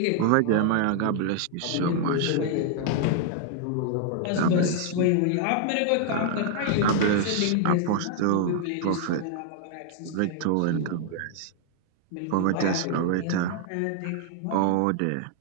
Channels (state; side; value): different; both; correlation 0.00